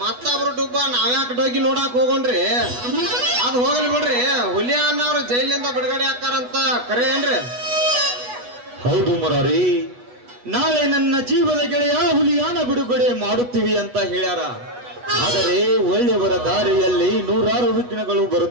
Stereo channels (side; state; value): left; late; 8.2 ms